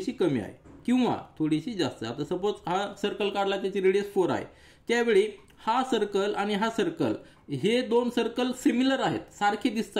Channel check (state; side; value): identical; both; correlation 1.00